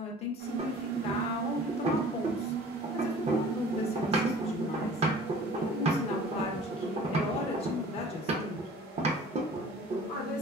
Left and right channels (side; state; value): both; normal; correlation 0.47